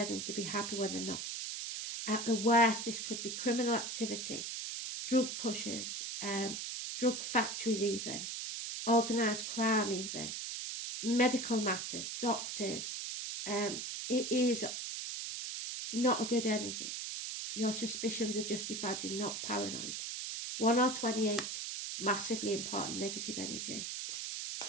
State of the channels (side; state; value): right; noise; hiss, 4 dB below the sound